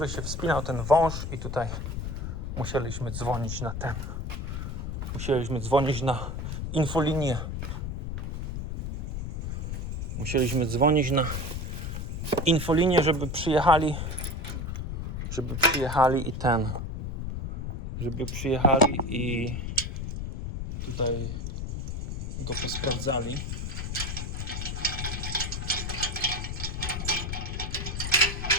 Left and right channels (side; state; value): left; noise; rumble, 3 dB below the sound